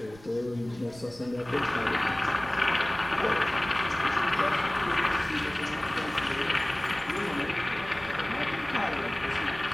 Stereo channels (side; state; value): right; noise; rumble, 20 dB below the sound